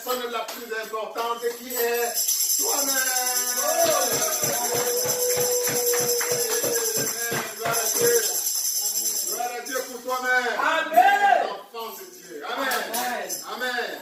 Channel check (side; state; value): both; identical; correlation 1.00